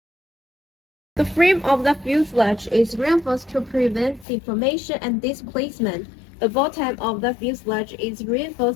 The frame of the fuselage is reinforced to prevent deformation and displacement. The bottom of the fuselage is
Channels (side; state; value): right; drops out; at 4.2 s